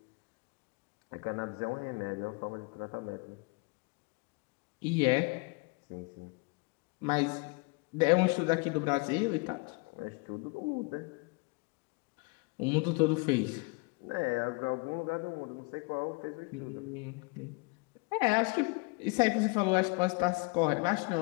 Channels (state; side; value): quieter; right; 29.7 dB